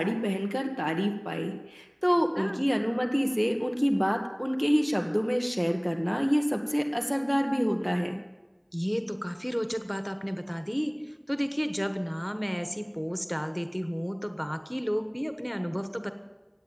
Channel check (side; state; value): both; identical; correlation 1.00